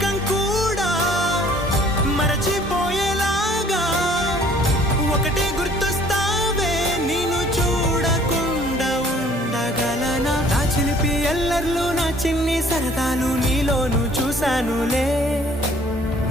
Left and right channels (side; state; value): both; normal; correlation 0.56